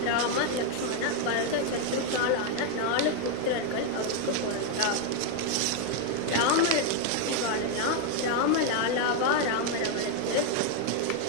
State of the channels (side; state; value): both; different; correlation 0.01